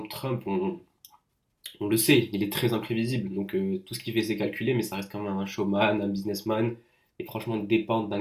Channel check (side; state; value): both; identical; correlation 1.00